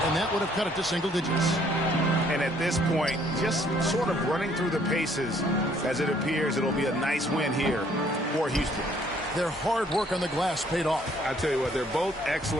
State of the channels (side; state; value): both; normal; correlation 0.63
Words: and that would have cut it to single digits. And at this point, just sort of running through the paces, as it appears it'll be a nice win here for Houston. Their hard work on the glass paid off. I tell you what, they're both